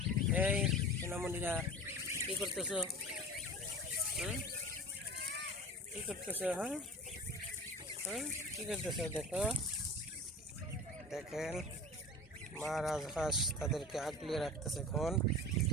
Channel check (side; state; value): both; normal; correlation 0.36